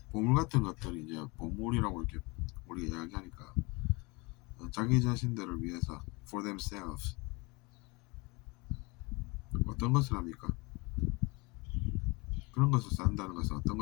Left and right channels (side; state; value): right; quieter; 26.7 dB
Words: 보물 같은 것들이 이제 보물이라고 이렇게 우리가 이야기하니까 자기 자신들을 위해서 for themselves 어떤 것을 합니까? 그런 것을 쌓는다는 것은 어떤